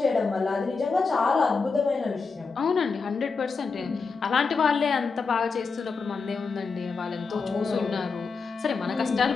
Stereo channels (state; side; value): quieter; right; 4.7 dB